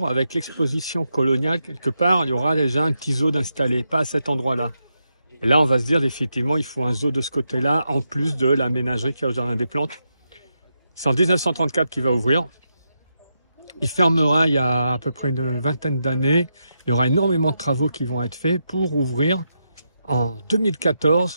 avec l'exposition coloniale quelque part. Il y aura déjà un petit zoo d'installé, pas à cet endroit-là. Et là, on va se dire effectivement, il faut un zoo de ce côté-là, en plus de la ménagerie qu'il y a au Jardin des Plantes. C'est en 1934 qu'il va ouvrir. Il fermera il y a à peu près une vingtaine d'années. Il y aura énormément de travaux qui vont être faits pour ouvrir en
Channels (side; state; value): both; inverted; correlation -0.84